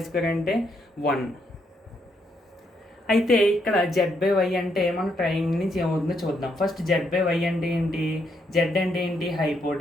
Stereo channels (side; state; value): both; normal; correlation 0.76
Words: square అంటే 1. అయితే ఇక్కడ Z/Y అంటే మన ట్రయాంగిల్ నుంచి ఏమవుతుందో చూద్దాం. ఫస్ట్ Z/Y అంటే ఏంటి? Z అంటే ఏంటి?